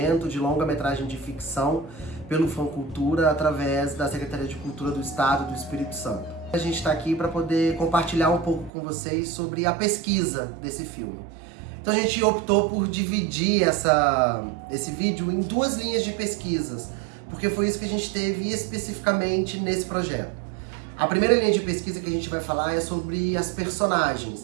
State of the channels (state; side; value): drops out; left; at 8.7 s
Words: de longa-metragem de ficção pelo Funcultura através da Secretaria de Cultura do Estado do Espírito Santo. A gente está aqui para poder compartilhar um pouco com vocês sobre a pesquisa desse filme. Então a gente optou por dividir esse vídeo em duas linhas de pesquisas, porque foi isso que a gente teve especificamente nesse projeto. A primeira linha de pesquisa que a gente vai falar é sobre as